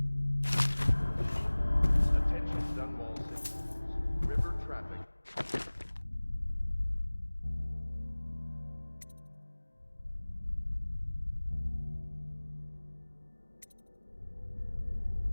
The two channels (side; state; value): both; inverted; correlation -1.00